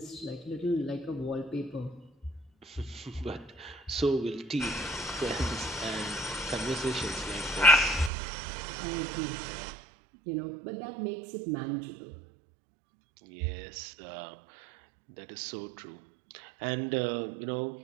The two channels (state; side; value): drops out; left; at 8.1 s